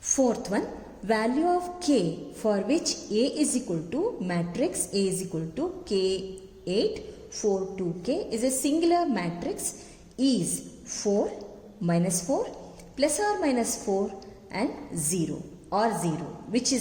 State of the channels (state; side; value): identical; both; correlation 1.00